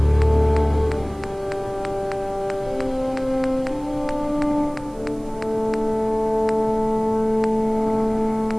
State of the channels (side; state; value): right; noise; hiss, 28 dB below the sound